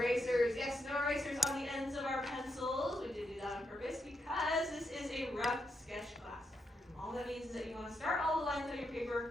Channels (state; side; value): normal; both; correlation 0.82